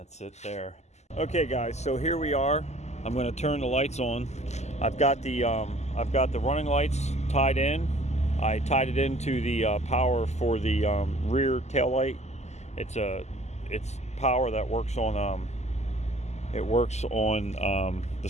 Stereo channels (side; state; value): right; late; 0.33 ms